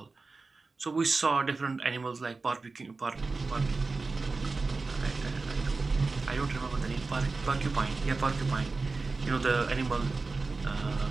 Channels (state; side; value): quieter; left; 3.9 dB